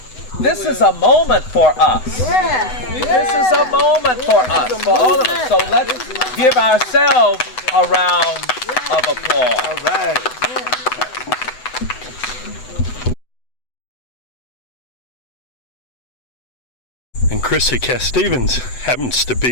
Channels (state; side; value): late; right; 7.9 ms